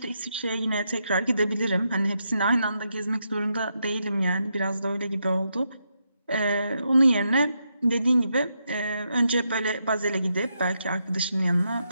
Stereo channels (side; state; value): both; inverted; correlation -0.82